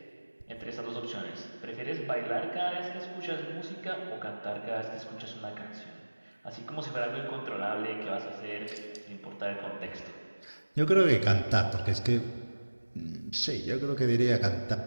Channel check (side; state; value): both; inverted; correlation -1.00